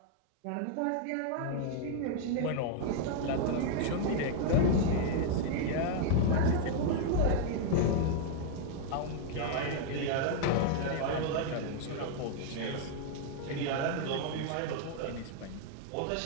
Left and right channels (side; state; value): both; different; correlation 0.00